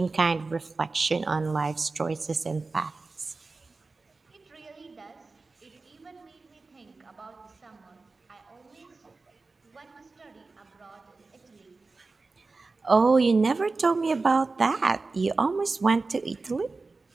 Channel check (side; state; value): left; quieter; 3.8 dB